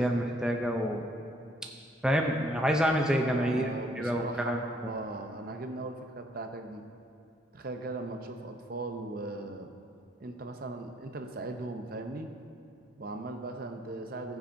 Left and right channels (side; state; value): both; normal; correlation 0.67